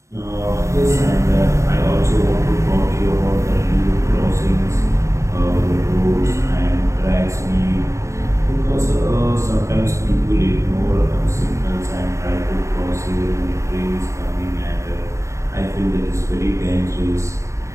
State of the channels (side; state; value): left; late; 0.14 ms